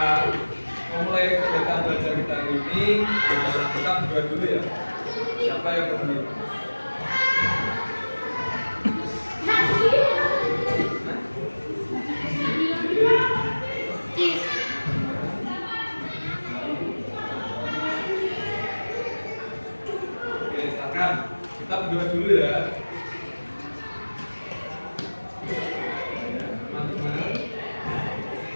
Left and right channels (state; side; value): inverted; both; correlation -1.00